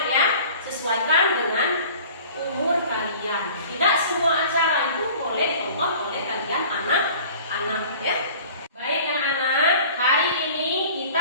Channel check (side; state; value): both; inverted; correlation -0.45